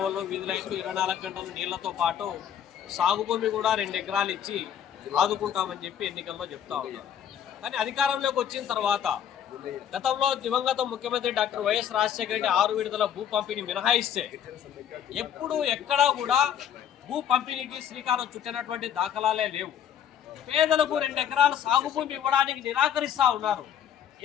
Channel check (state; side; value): quieter; right; 9.5 dB